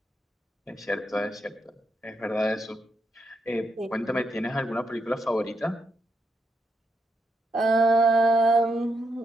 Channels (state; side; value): normal; both; correlation 0.81